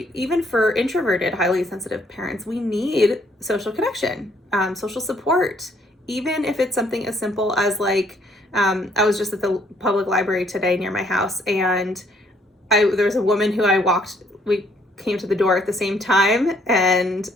for introverted, highly sensitive parents, we need social connection, social support, even if it's something as simple as like, I was just at the public library today near my house, and there was a woman who we came to the door at the same time, and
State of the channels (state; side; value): normal; both; correlation 0.66